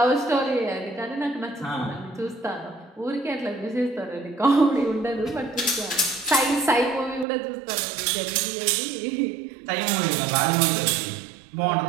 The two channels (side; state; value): left; drops out; at 7.2 s